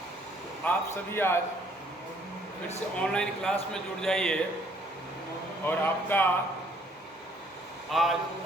आप सभी आज फिर से ऑनलाइन क्लास में जुड़ जाइए और आपका आज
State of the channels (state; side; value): normal; both; correlation 0.63